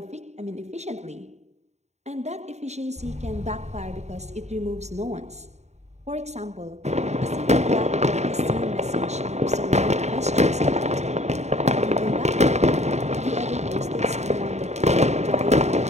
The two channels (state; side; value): late; left; 0.32 ms